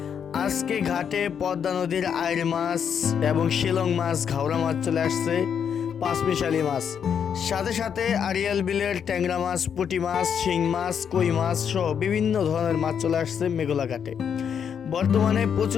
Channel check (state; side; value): quieter; right; 7.7 dB